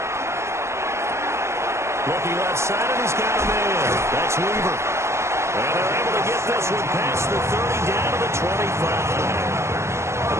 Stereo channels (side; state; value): left; late; 0.13 ms